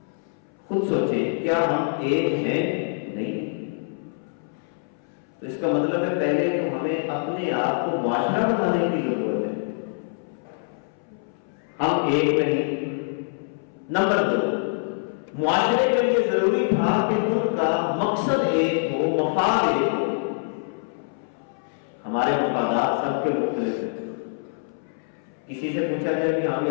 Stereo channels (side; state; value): right; silent; 62 dB below the other